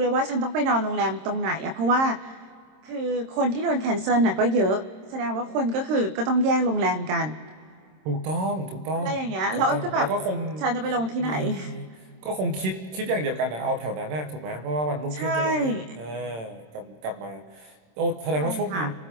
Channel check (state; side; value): late; left; 26 ms